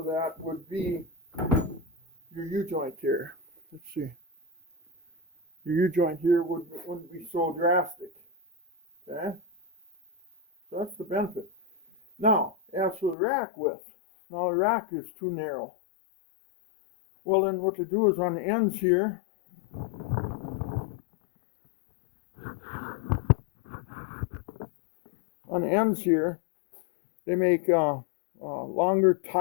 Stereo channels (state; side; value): drops out; right; at 13.2 s